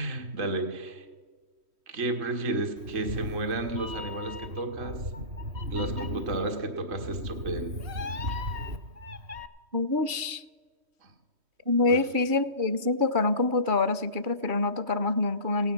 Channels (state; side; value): late; left; 3.1 ms